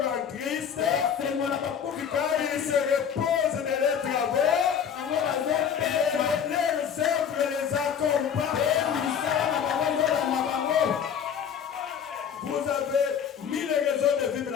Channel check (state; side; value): quieter; right; 7.9 dB